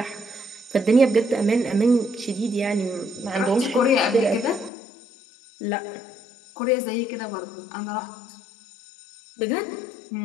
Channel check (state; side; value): drops out; right; at 4.7 s